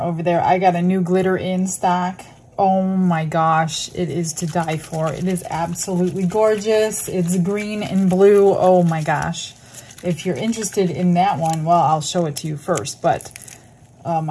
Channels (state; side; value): identical; both; correlation 1.00